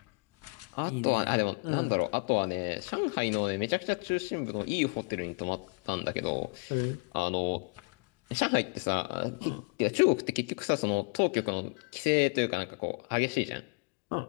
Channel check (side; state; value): right; quieter; 36.0 dB